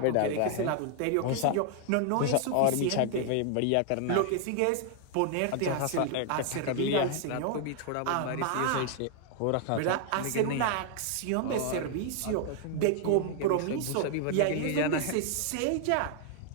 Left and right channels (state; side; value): different; both; correlation 0.00